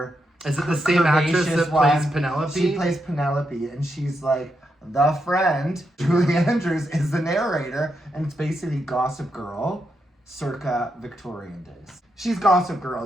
Is it the same actress that plays Penelope? She plays Penelope, and she's like the friend. Julie Andrews is the narrator, and it's basically Gossip Girl, circa Victorian days. She's Gossip Girl,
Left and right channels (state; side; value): normal; both; correlation 0.83